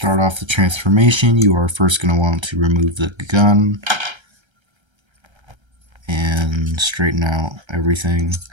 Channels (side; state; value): left; late; 1.3 ms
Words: off the transformation, you are first going to want to remove the gun and straighten out everything